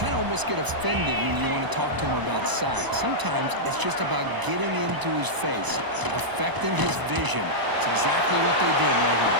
of almost get offended when you want to talk to him about sacks. Sometimes it's just about getting into his face, affecting his vision. It's exactly what they did right here.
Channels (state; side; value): late; left; 1.0 ms